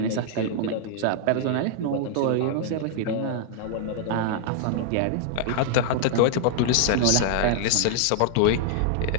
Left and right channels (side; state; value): both; different; correlation -0.01